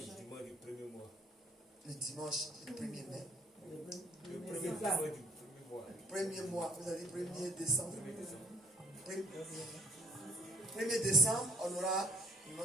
le dimanche, le 1er mai. Le premier mois, vous avez 1er décembre. 1er décembre, on aura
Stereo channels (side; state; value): both; normal; correlation 0.61